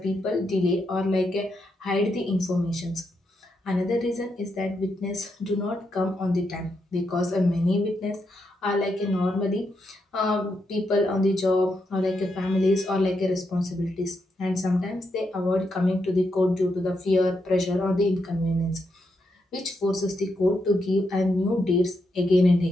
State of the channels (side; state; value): both; normal; correlation 0.82